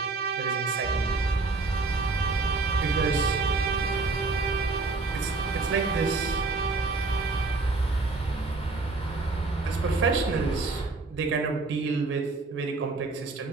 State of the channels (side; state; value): left; quieter; 3.7 dB